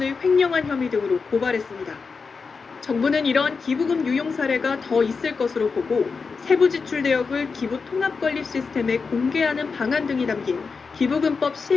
횡령한 혐의 등으로 고발했습니다. 정부는 이러한 기부금 유용 사례가 더 있을 것으로 보고 세부 지출 내역을 기부 통합 관리 시스템에 공개하는 방안 등이 담긴 기부금법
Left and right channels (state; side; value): quieter; right; 4.9 dB